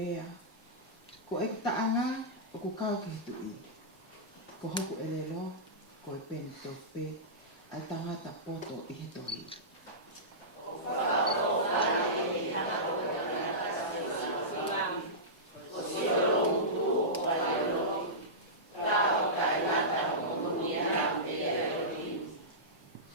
Ko e taanga o ku kau ki hitui. Ko hoku e lelo ko e peni tope ai tangata poto i he tohi.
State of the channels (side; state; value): both; normal; correlation -0.17